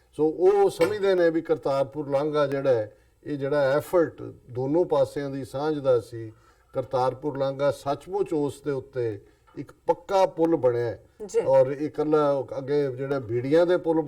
ਸੋ ਉਹ ਸਮਝਦੇ ਨੇ ਵੀ ਕਰਤਾਰਪੁਰ ਲਾਂਘਾ ਜਿਹੜਾ ਹੈ, ਇਹ ਜਿਹੜਾ ਐਫਰਟ ਦੋਨੋਂ ਪਾਸਿਆਂ ਦੀ ਸਾਂਝ ਦਾ ਸੀ, ਕਰਤਾਰਪੁਰ ਲਾਂਘਾ ਸੱਚਮੁੱਚ ਉਸ ਦੇ ਉੱਤੇ ਇੱਕ ਪੱਕਾ ਪੁਲ ਬਣਿਆ, ਔਰ ਇਹ ਇਕੱਲਾ ਅੱਗੇ ਜਿਹੜਾ ਬੀੜੀਆਂ ਦੇ ਪੁਲ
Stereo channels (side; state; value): both; identical; correlation 1.00